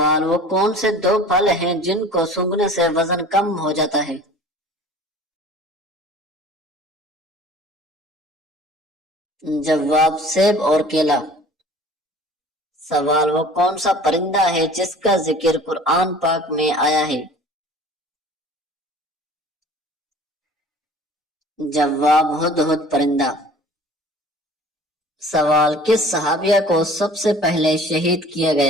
وہ کون سے 2 پھل ہیں جن کو سونگھنے سے وزن کم ہو جاتا ہے؟ جواب سیب اور کیلا۔ سوال وہ کون سا پرندہ ہے جس کا ذکر قرآن پاک میں آیا ہے؟ جواب ہدہد پرندہ۔ سوال: کس صحابیہ کو سب سے پہلے شہید کیا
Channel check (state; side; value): normal; both; correlation 0.46